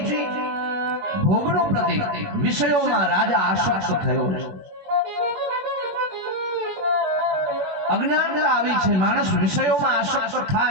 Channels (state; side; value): late; left; 21 ms